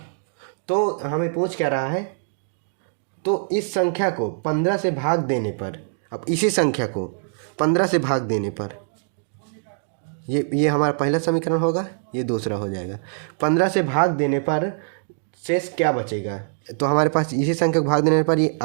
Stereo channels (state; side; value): silent; left; digital silence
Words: तो हमें पूछ क्या रहा है, तो इस संख्या को 15 से भाग देने पर, अब इसी संख्या को 15 से भाग देने पर, ये हमारा पहला समीकरण होगा, ये दूसरा हो जाएगा। 15 से भाग देने पर शेष क्या बचेगा, तो हमारे पास इसी संख्या को भाग देने पर ये